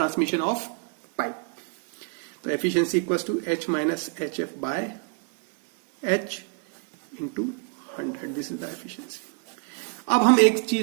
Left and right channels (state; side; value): quieter; left; 37.9 dB